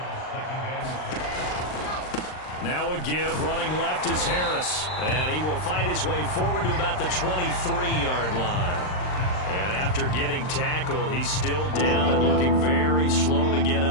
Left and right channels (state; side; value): late; right; 39 ms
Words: Now a give, running left is Harris. And he will find his way forward to about the 23-yard line. And after getting tackled, he's still down and looking very slow to get